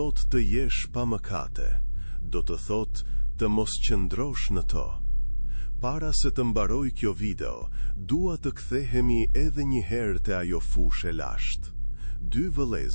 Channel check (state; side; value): inverted; both; correlation -1.00